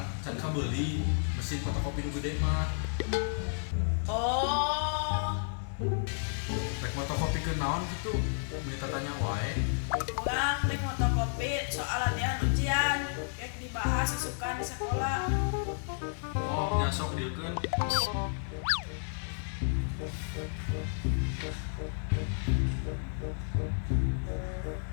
can ka beli mesin fotokopi nu gede mah. Oh, Rek fotokopi ke naon gitu. Minta tanya wae. orang rek fotokopi soal latihan ujian, kayak dibahas isukan di sekolah. Oh, nyasok dieukeun.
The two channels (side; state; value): right; silent; digital silence